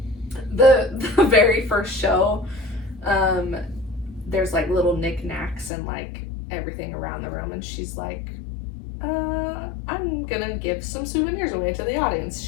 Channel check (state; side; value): drops out; right; at 5.7 s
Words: The very first show, there's like little knickknacks and like everything around the room, and she's like, I'm gonna give some souvenirs away to the audience.